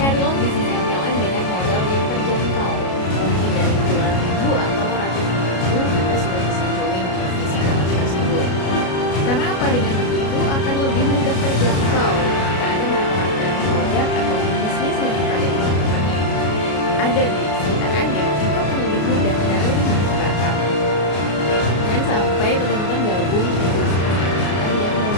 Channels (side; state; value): right; late; 33 ms